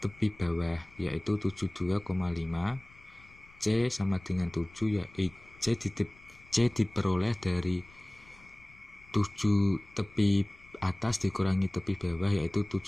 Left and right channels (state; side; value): noise; left; rumble, 25 dB below the sound